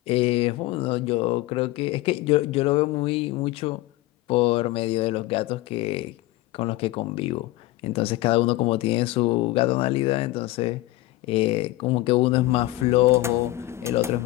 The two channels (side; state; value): right; quieter; 18.1 dB